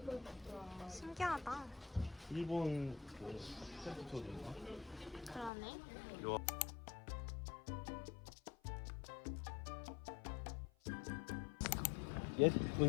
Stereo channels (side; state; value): right; drops out; at 5.5 s